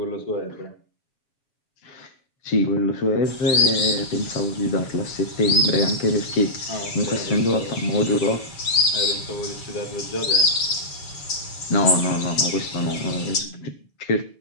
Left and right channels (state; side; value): late; right; 7.2 ms